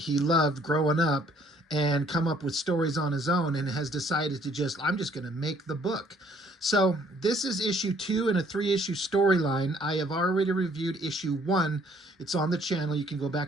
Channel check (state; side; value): normal; both; correlation 0.62